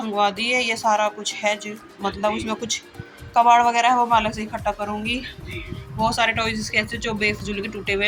दी है, ये सारा कुछ है जो मतलब उसमें कुछ कबाड़ वगैरह है वो मैं अलग से इकट्ठा करूँगी। बहुत सारे टॉयज़ इसके ऐसे जो बेफजूल के टूटे हुए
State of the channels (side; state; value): both; identical; correlation 1.00